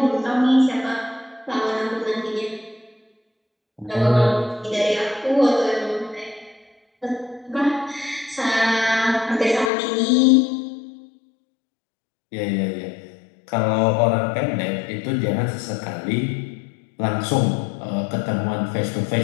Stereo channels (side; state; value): right; drops out; at 9.7 s